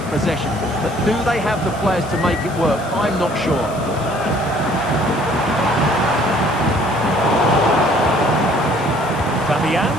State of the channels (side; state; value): left; noise; hiss, 20 dB below the sound